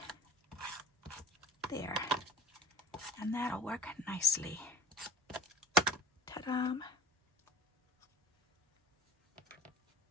There. And that'll work nicely. Ta-da!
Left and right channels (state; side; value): normal; both; correlation 0.42